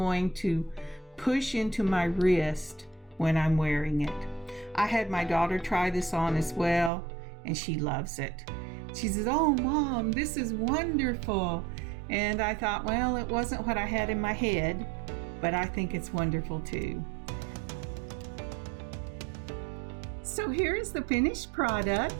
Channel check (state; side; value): drops out; left; at 6.9 s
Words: to push into my wrist when I'm wearing it. I had my daughter try this on as well and she loves it. She says, "Oh, Mom, this is wonderful." And I thought, well, it wasn't what I had in my head, but I think it's wonderful too. So here is the finished